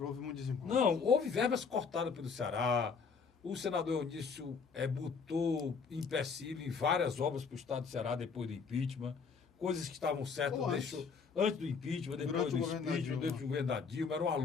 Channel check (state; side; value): quieter; right; 5.5 dB